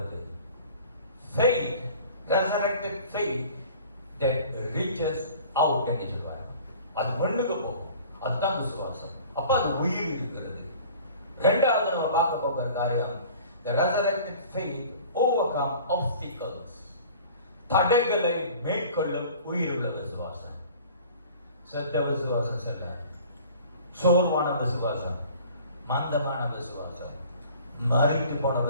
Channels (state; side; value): inverted; both; correlation -0.47